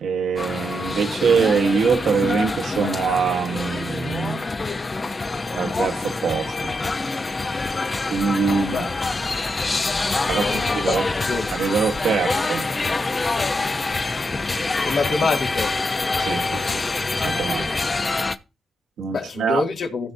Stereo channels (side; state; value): both; normal; correlation 0.83